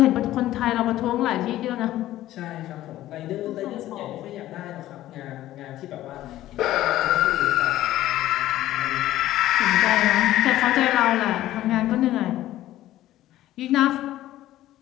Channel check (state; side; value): quieter; right; 14.4 dB